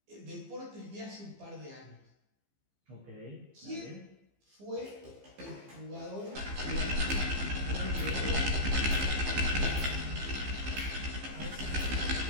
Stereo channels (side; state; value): left; late; 15 ms